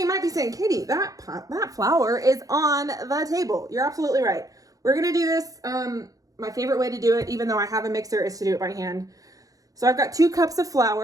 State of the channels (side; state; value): left; late; 0.17 ms